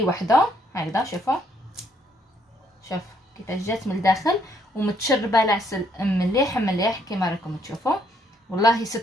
وحده هكذا. شوفوا شوف كيفاش جات من الداخل ومتشربه العسل مليح مليح كما راكم تشوفوا. والله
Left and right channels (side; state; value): both; normal; correlation 0.70